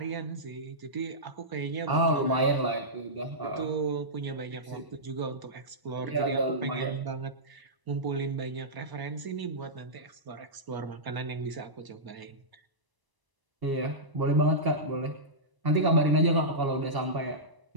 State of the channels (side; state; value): left; late; 1.0 ms